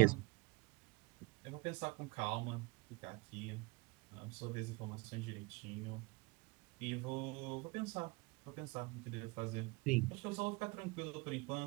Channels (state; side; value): quieter; left; 24.5 dB